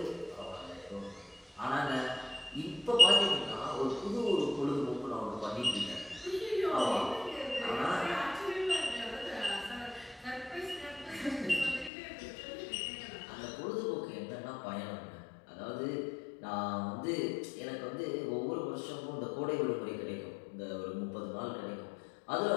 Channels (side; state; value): right; drops out; at 11.9 s